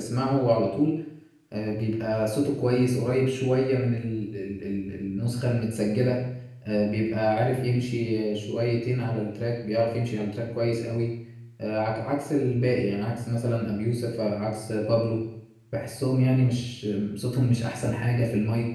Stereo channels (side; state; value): both; identical; correlation 1.00